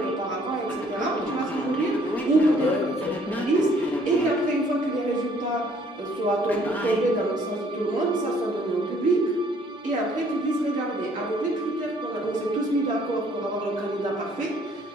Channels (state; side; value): normal; both; correlation 0.61